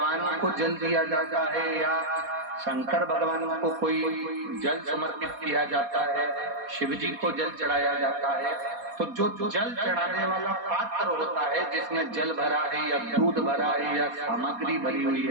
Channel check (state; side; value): late; left; 4.2 ms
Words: को जल दिया जाता है या शंकर भगवान को कोई जल समर्पित किया जाता है, शिव जी को जल चढ़ाया जाता है, तो जो जल चढ़ाने वाला पात्र होता है जिसमें जल भरा है या दूध भरा है या सामग्री भरी हुई